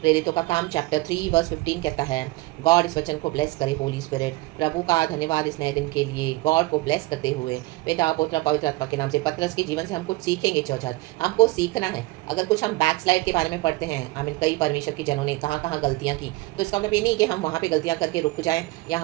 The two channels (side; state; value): left; quieter; 20.7 dB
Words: का काम चैप्टर 3 वर्स 15 कहता है, गॉड इस वचन को ब्लेस करे, होली स्पिरिट। प्रभु का धन्यवाद इस नए दिन के लिए, गॉड को ब्लेस करते हुए पिता पुत्र पवित्र आत्मा के नाम से। पतरस के जीवन से हम कुछ सीखेंगे चर्च, आज हमको सीखना है। अगर कुछ हम बैकस्लाइड के बारे में पढ़ते हैं, आमीन, कई परमेश्वर के जनों ने कहाँ कहाँ गलतियाँ की, तो इसका मतलब ये नहीं कि हम वहाँ पे गलतियाँ करके रुक जाएं या